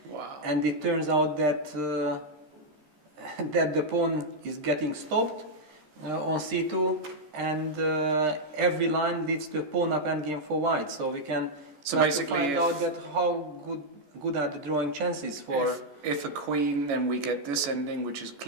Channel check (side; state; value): left; late; 14 ms